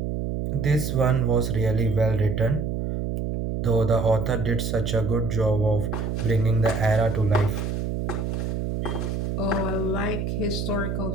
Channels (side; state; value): right; noise; hum, 2 dB below the sound